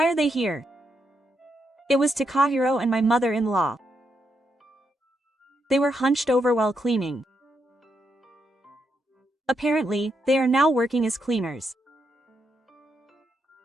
are they here? It was Takahiro and my mother-in-law. They were hunched over while cleaning. Apparently, they are now working as cleaners.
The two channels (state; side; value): normal; both; correlation 0.81